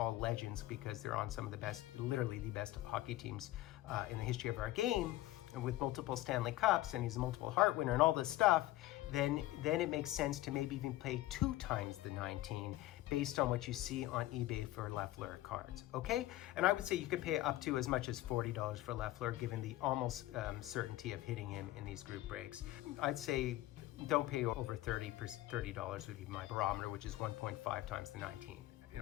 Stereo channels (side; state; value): right; quieter; 16.1 dB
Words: legends because they're on some of the best, literally the best hockey teams in the history of our game, and with multiple Stanley Cups, and he's a multiple Hart winner and all this stuff, then it makes sense to maybe even pay 2 times the 19 based on what you see on eBay for Lafleur cards, okay? And I would say you could pay up to as much as $40 for Lafleur, given the almost certainty of hitting him in these group breaks. I'd say don't pay over $30 would be my barometer, which is 1.5 times the 19,